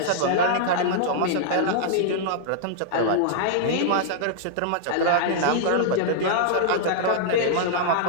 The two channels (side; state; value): both; different; correlation -0.01